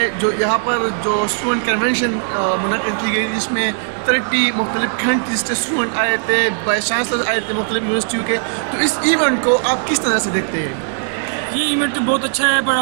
جو یہاں پر جو اسٹوڈنٹ کنونشن منعقد کی گئی جس میں 30 مختلف کنٹریز سے اسٹوڈنٹ آئے تھے، وائس چانسلر آئے تھے مختلف یونیورسٹیوں کے، تو اس ایونٹ کو آپ کس طرح سے دیکھتے ہیں؟ یہ ایونٹ بہت اچھا ہے،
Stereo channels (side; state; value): left; silent; digital silence